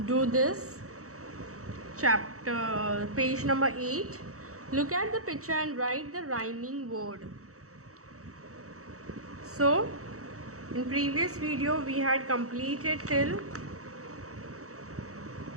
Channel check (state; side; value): late; left; 0.65 ms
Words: do this chapter, page number 8. Look at the picture and write the rhyming word. So in previous video we had completed till